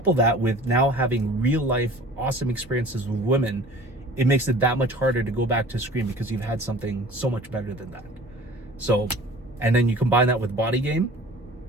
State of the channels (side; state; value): both; normal; correlation 0.44